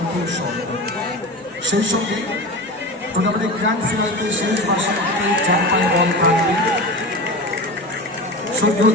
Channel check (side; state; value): both; normal; correlation 0.28